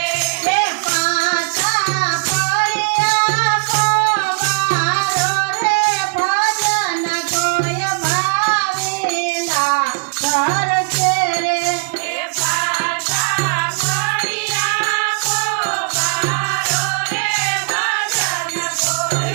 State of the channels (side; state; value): left; quieter; 37.5 dB